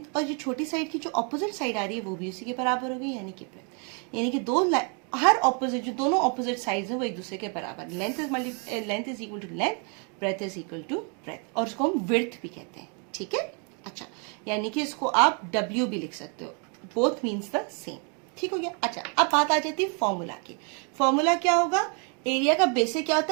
और जो छोटी साइड की जो ऑपोजिट साइड आ रही है वो भी उसी के बराबर होगी, यानी कि ब्रेथ। यानी कि दो हर ऑपोजिट जो दोनों ऑपोजिट साइड्स हैं वो एक दूसरे के बराबर। Length is equal to length, breadth is equal to breadth, और उसको हम विड्थ भी कहते हैं। ठीक है, अच्छा, यानी कि इसको आप W भी लिख सकते हो, बोथ मीन्स द सेम। ठीक हो गया। अच्छा, अब बात आ जाती है फॉर्मूला की। फॉर्मूला क्या होगा, एरिया का बेसिक क्या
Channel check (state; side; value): quieter; left; 37.7 dB